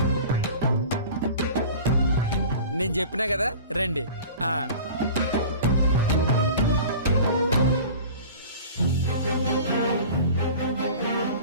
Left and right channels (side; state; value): both; inverted; correlation -0.40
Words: నేను చెప్పినా కదా, రండి.